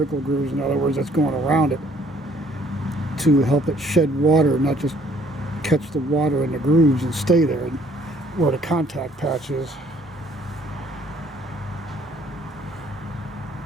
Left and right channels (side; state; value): both; normal; correlation 0.61